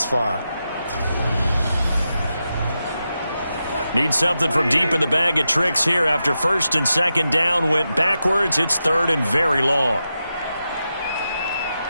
far. Need something from deep in the bag of tricks here after 1st and 2nd down went backwards. It's 3rd and very long.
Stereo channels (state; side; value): inverted; both; correlation -0.89